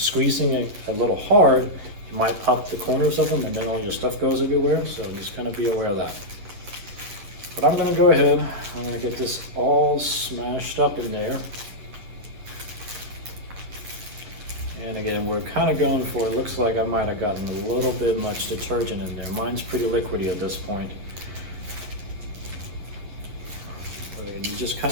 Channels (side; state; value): left; late; 10 ms